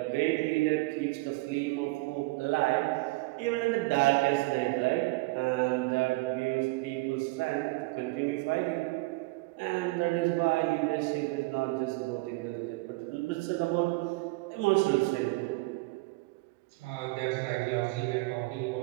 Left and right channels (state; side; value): quieter; left; 23.2 dB